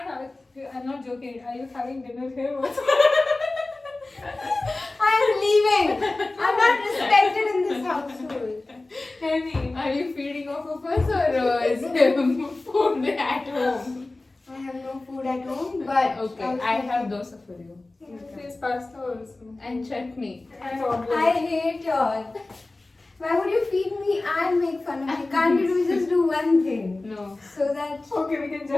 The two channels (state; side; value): quieter; right; 3.1 dB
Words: I'm not joking. Are you having dinner here also? I'm leaving. I'm not respected in this household. Henny. Are you feeding off of us or is there food at home? I have no food at home, but Okay, I have dosa for you. There's pasta also. And chutney. And order. I hate y'all. Why would you feed me and make fun of me? Can't you just do one thing? No, So that. Okay, we can